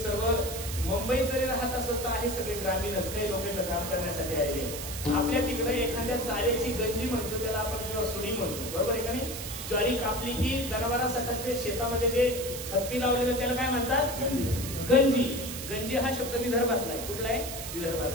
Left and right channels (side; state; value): right; noise; hiss, 8 dB below the sound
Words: मुंबईत जरी राहत असेल तर आहे सगळे ग्रामीणच, काही लोक इथं काम करण्यासाठी आलेले. आपल्या तिकडे एखाद्या चाऱ्याची गंजी म्हणतो त्याला आपण, किंवा सुडी म्हणतो, बरोबर आहे का नाही? ज्वारी कापली की जनावरांसाठी शेतामध्ये जे थप्पी लावले त्याला काय म्हणतात? गंजी. गंजी हा शब्द विदर्भातला आहे. कुठला आहे?